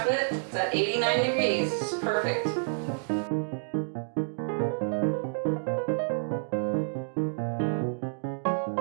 It's at 89 degrees. It's perfect.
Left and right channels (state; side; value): silent; left; digital silence